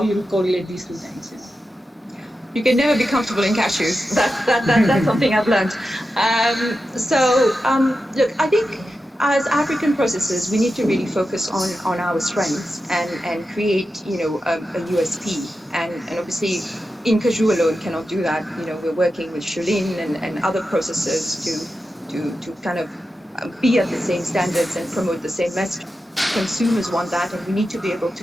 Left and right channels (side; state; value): both; normal; correlation 0.90